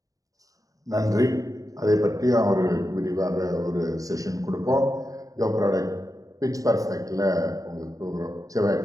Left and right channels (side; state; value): left; late; 0.17 ms